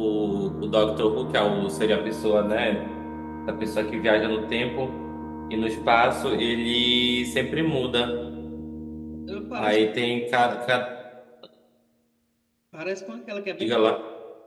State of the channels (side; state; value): both; identical; correlation 1.00